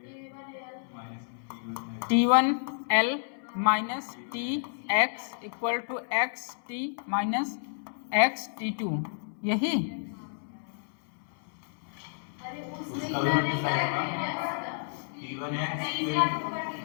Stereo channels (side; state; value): right; silent; 58 dB below the other